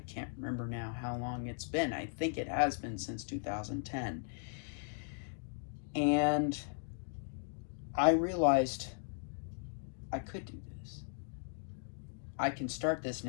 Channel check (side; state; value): right; silent; digital silence